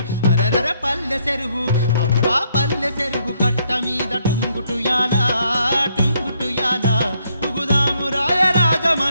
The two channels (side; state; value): both; inverted; correlation -0.72